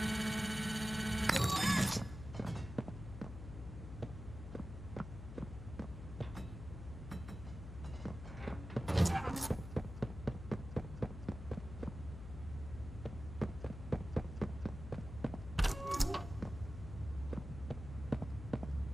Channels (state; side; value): noise; left; hum, 10 dB below the sound